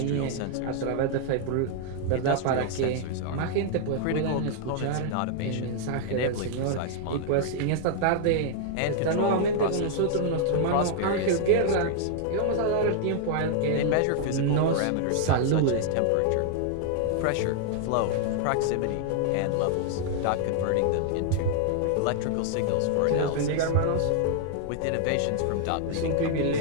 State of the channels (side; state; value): both; different; correlation 0.00